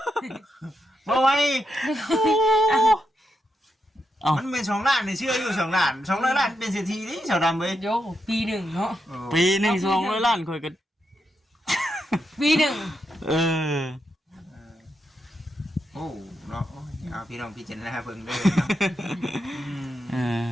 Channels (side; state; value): both; normal; correlation 0.84